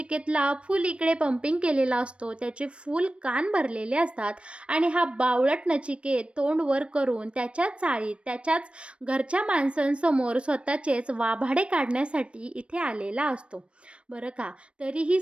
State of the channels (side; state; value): left; late; 0.059 ms